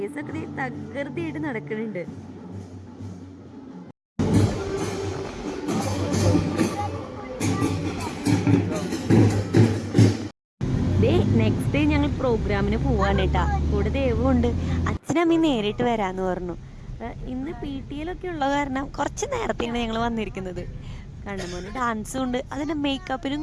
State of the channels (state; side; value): identical; both; correlation 1.00